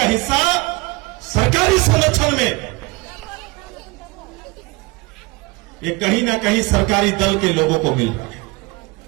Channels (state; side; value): quieter; left; 24.4 dB